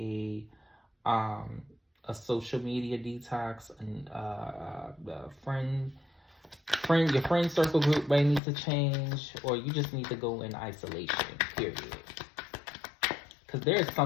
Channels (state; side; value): drops out; right; at 8.4 s